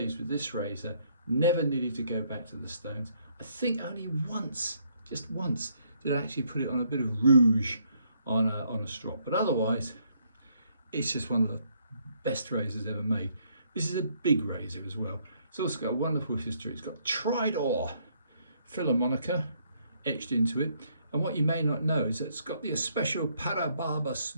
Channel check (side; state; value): both; inverted; correlation -0.70